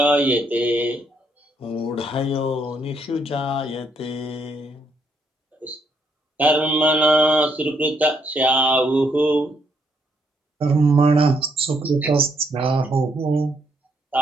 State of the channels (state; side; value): normal; both; correlation 0.73